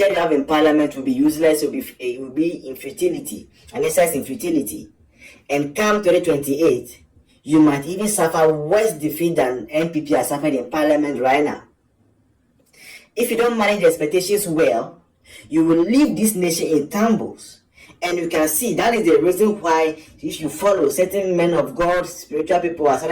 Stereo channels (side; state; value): both; identical; correlation 1.00